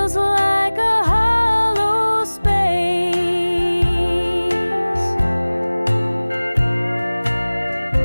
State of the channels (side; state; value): both; inverted; correlation -1.00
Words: like a hollow space.